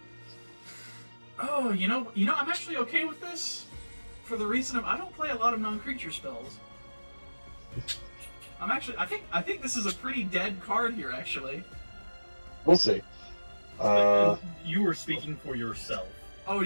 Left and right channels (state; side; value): inverted; both; correlation -1.00